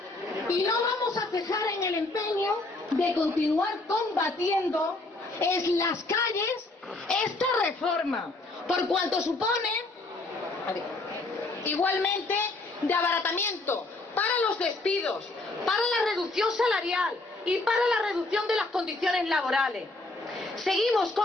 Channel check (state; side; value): quieter; right; 3.0 dB